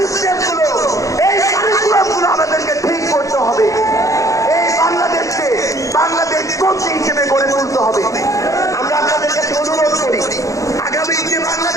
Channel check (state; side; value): late; right; 0.16 ms